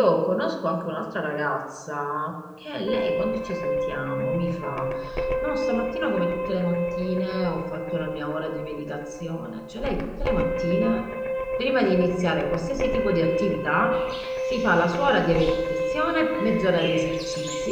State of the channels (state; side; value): identical; both; correlation 1.00